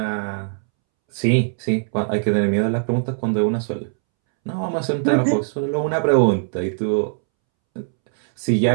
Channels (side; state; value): left; silent; 65 dB below the other